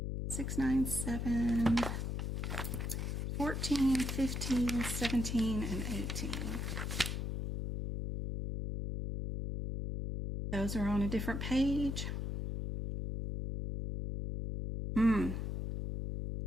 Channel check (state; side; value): noise; left; hum, 2 dB below the sound